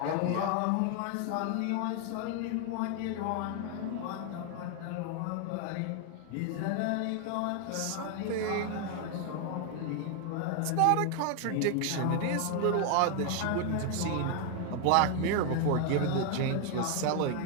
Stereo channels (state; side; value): different; both; correlation 0.00